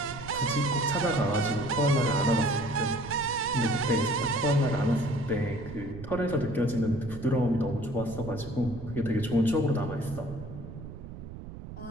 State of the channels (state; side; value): noise; right; rumble, 12 dB below the sound